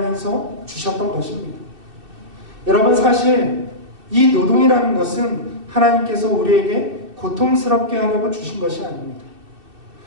주셨던 것입니다. 여러분, 사실 이 노동이라는 것은 하나님께서 우리에게 고통스럽게 하려고 주신 것이 아닙니다.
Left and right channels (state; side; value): late; left; 2.6 ms